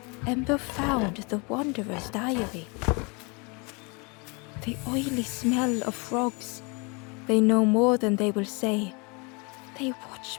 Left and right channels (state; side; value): quieter; right; 30.7 dB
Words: Ember found the Wanderer's diary. The oily smell of frogs. They know more than they will say. They